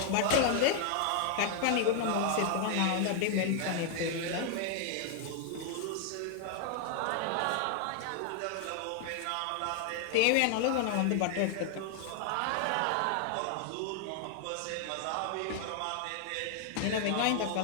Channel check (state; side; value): different; both; correlation 0.00